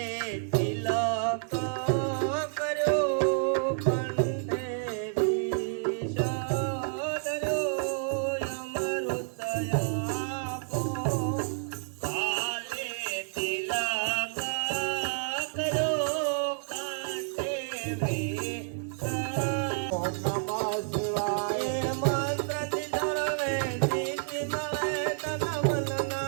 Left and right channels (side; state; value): left; silent; 58 dB below the other